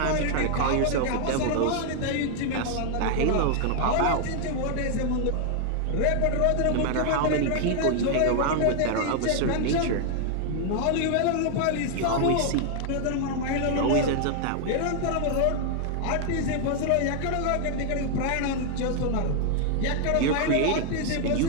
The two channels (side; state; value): both; different; correlation 0.00